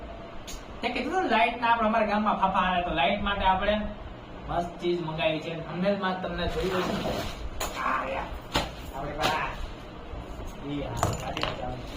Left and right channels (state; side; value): identical; both; correlation 1.00